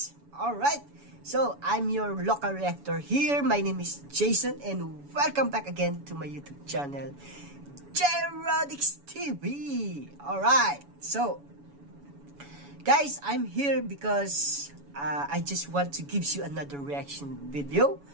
Alright, so I'm your local reactor here. My name is Jayson and welcome back again to my YouTube channel, Jerodix TV. Alright, so guys, I'm here because I just want to give you another reaction video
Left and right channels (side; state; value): left; late; 7.1 ms